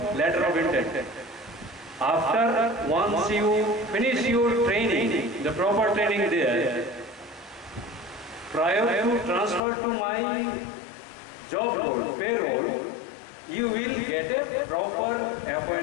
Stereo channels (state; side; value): drops out; right; at 9.6 s